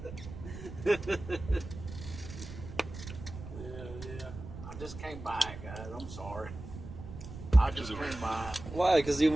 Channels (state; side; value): noise; right; rumble, 11 dB below the sound